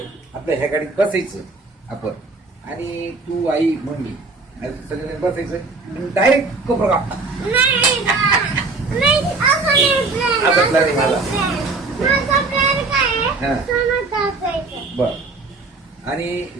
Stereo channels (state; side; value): quieter; left; 3.8 dB